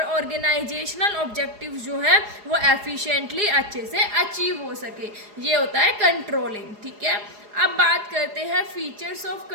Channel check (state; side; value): late; left; 4.8 ms